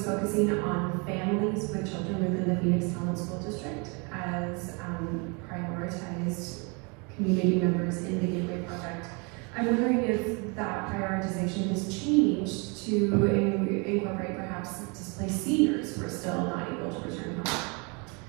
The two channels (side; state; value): left; quieter; 31.7 dB